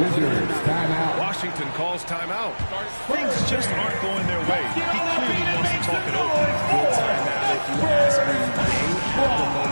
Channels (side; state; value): both; inverted; correlation -1.00